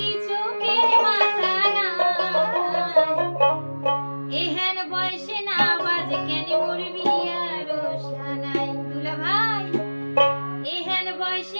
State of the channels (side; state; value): both; inverted; correlation -1.00